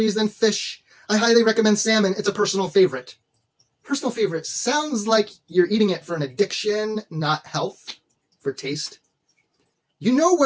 than fish. I highly recommend salmon. It's a personal favorite. Personal favorite sounds like you're eating it for an addiction, not health, for taste. You know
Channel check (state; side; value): identical; both; correlation 1.00